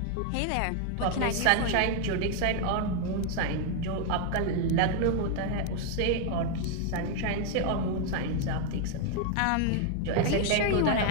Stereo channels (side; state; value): both; different; correlation 0.00